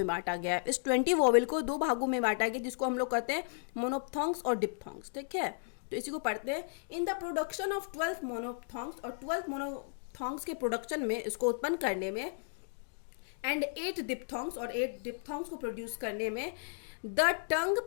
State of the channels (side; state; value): right; silent; digital silence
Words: बांटा गया है। इस 20 वॉवेल को दो भागों में बांटा गया, जिसको हम लोग कहते हैं मोनोथॉन्ग्स और डिप्थॉन्ग्स। ठीक है, तो इसी को पढ़ते हैं। इन द प्रोडक्शन ऑफ 12 मोनोथॉन्ग्स, और 12 मोनोथॉन्ग्स के प्रोडक्शन में, इसको उत्पन्न करने में, एंड 8 डिप्थॉन्ग्स, और 8 डिप्थॉन्ग्स को प्रोड्यूस करने में, the tongue